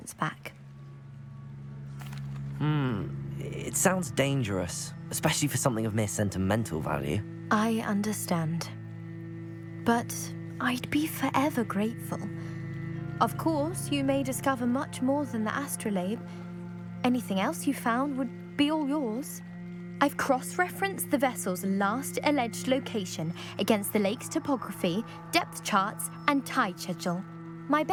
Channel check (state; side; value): identical; both; correlation 1.00